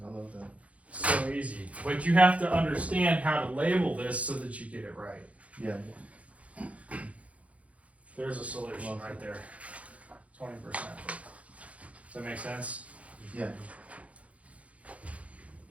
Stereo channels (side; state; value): left; late; 0.065 ms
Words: I love that. So easy. But you have to understand how to label this so that you get it right. Yeah. There's a solution right there. 20%. Does that make sense? Yeah.